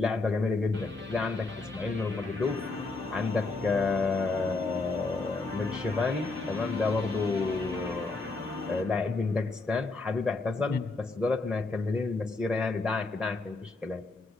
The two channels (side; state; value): right; quieter; 3.6 dB